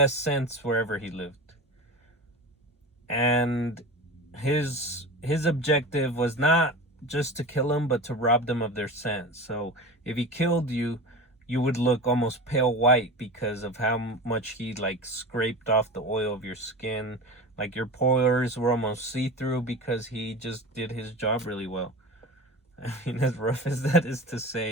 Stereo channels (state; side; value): normal; both; correlation 0.30